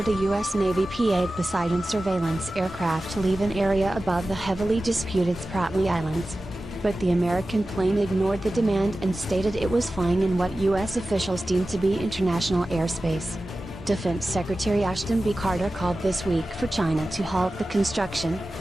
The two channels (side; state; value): both; normal; correlation 0.95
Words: a U.S. Navy P-8 Poseidon surveillance aircraft to leave an area above the heavily disputed Spratlys Islands. But the American plane ignored the demand and stated it was flying in what U.S. officials deemed to be international airspace. Defense Secretary Ashton B. Carter called this week for China to halt the construction,